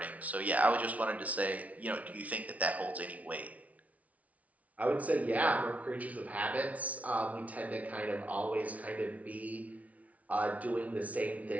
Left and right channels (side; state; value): left; late; 0.068 ms